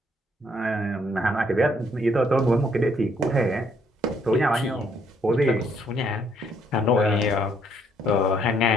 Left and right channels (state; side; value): normal; both; correlation 0.69